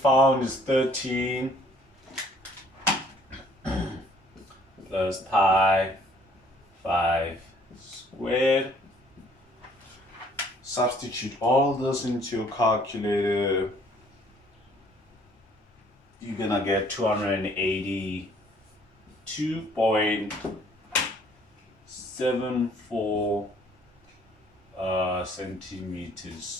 is 13, plus pi 5 squared. Substitute all this into your calculator. You're gonna get 282.74 centimeters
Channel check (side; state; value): both; normal; correlation 0.60